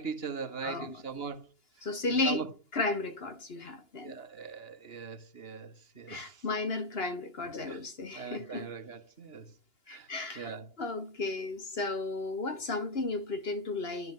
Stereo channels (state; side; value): late; right; 2.9 ms